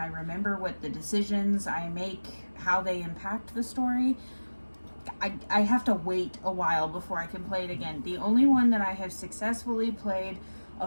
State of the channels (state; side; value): inverted; both; correlation -1.00